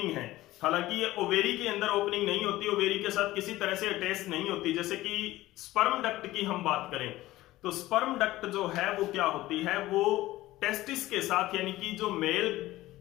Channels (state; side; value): quieter; right; 16.9 dB